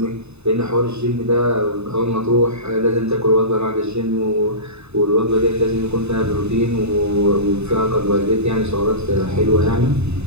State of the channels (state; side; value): late; left; 0.80 ms